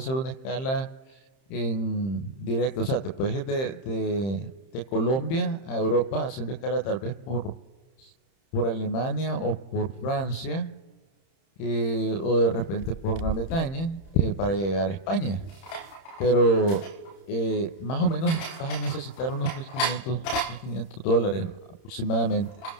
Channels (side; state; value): right; late; 30 ms